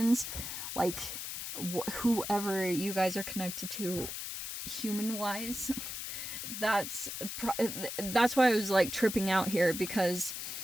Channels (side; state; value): left; noise; hiss, 6 dB below the sound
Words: like whoever you guys are connected to human-wise. That's why I was like tripping out here, because